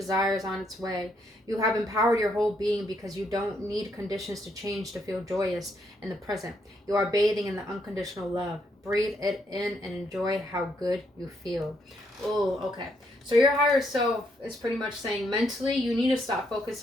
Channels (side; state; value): both; normal; correlation 0.75